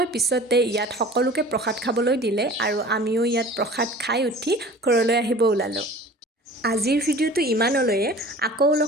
পিছতে ইয়াত সকলোকে প্ৰসাদ খাবলৈ দিলে আৰু আমিও ইয়াত প্ৰসাদ খাই উঠি ঘৰলৈ আহিব ওলালোঁ আজিৰ ভিডিঅ'টো ইমানলৈয়ে আকৌ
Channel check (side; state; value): both; normal; correlation 0.43